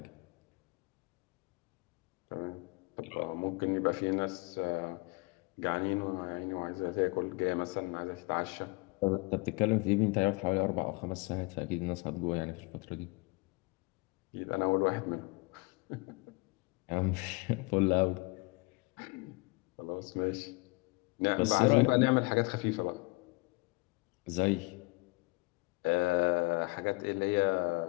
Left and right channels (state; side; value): quieter; right; 27.3 dB